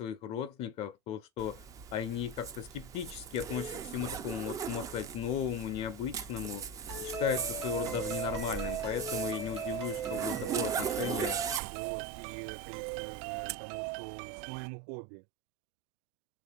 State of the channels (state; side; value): drops out; left; at 11.6 s